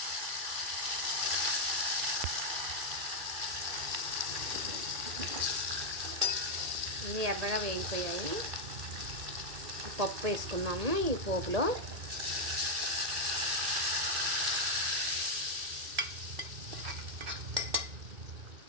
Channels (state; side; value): late; left; 1.8 ms